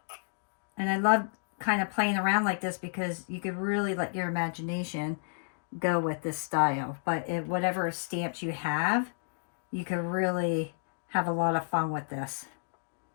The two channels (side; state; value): right; silent; digital silence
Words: And I love kind of playing around like this because you could really let your imagination go with this style. But whatever stamps you have, you could really have a lot of fun with this.